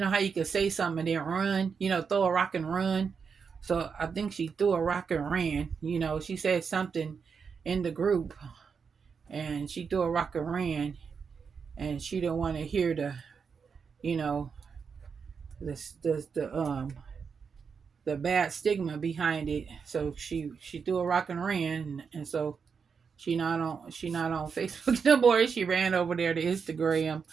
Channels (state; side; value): quieter; left; 5.9 dB